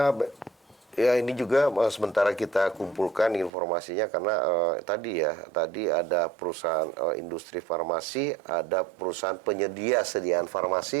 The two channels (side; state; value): left; drops out; at 3.5 s